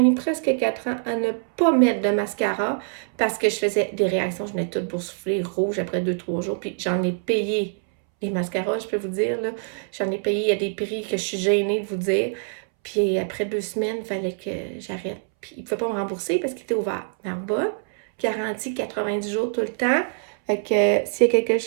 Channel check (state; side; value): silent; left; 62 dB below the other